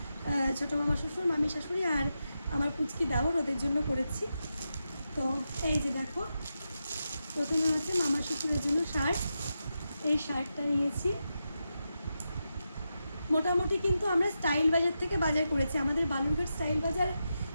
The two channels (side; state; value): both; inverted; correlation -0.88